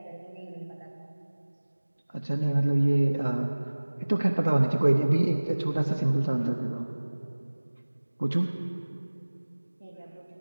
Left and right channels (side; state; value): both; inverted; correlation -1.00